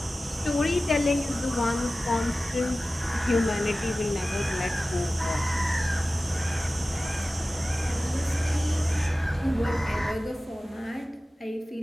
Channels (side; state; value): both; normal; correlation 0.96